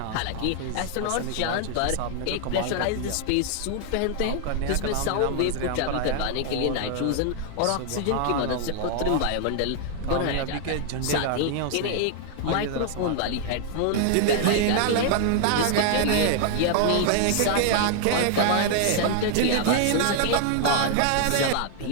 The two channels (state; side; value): different; both; correlation 0.00